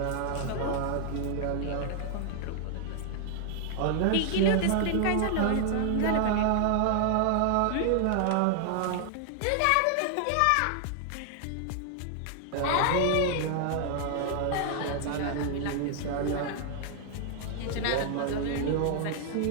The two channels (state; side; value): different; both; correlation 0.00